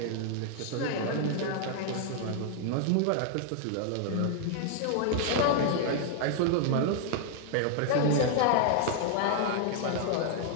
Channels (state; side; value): different; both; correlation -0.01